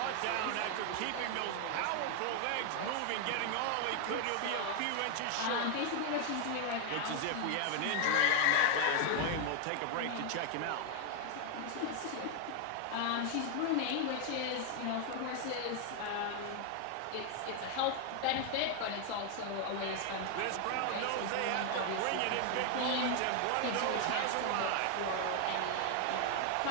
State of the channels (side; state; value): both; different; correlation 0.00